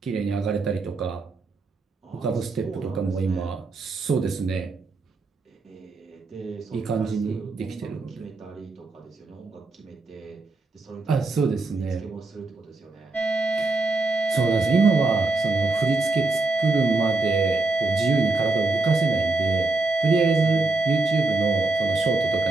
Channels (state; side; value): quieter; left; 3.4 dB